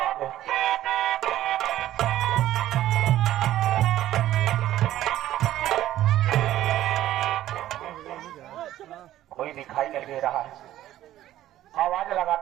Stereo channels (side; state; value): left; quieter; 13.5 dB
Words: आगे कोई दिखाई नहीं दे रहा है, आवाज